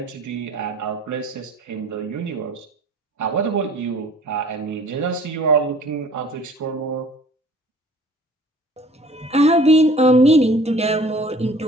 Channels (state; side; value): normal; both; correlation 0.50